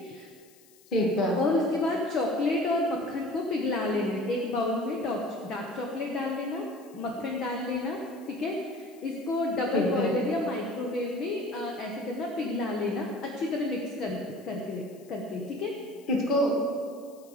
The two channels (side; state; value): left; noise; hiss, 27 dB below the sound